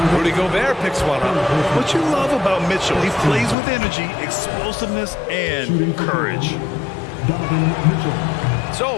Rudy Gobert picks one up. What you love about Mitchell, he plays with energy, explosiveness, and courage. So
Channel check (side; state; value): right; drops out; at 3.6 s